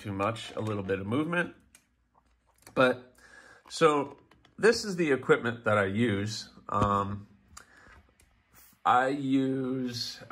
much, a little bit of movement. But so this is the equipment that I use.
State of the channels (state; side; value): identical; both; correlation 1.00